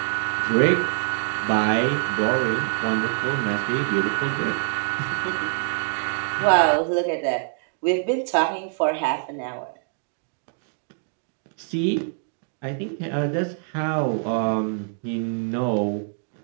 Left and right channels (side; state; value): left; silent; digital silence